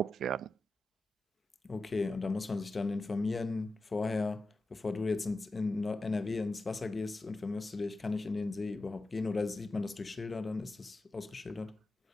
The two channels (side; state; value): both; normal; correlation 0.93